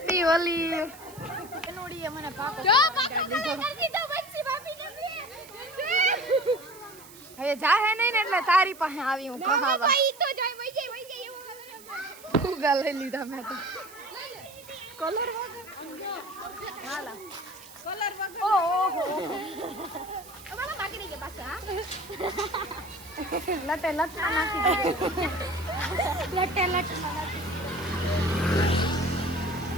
હોલી નોડીએ મને પાકો હવે જાહે નહીં ને એટલે તારી પાસે આવી હું કહાવા ફુગા લઈ લીધા મેં તો કલર હાલા કલર વગર ઓહો અમારા બાકી રહી ગયા પાછા લટે લટ નાખી દે લટે લટ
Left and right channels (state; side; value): noise; right; hiss, 20 dB below the sound